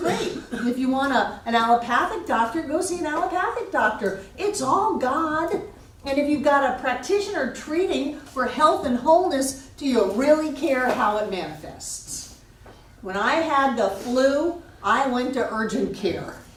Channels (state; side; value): identical; both; correlation 1.00